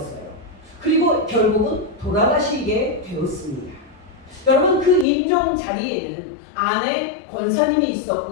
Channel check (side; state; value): right; drops out; at 5.1 s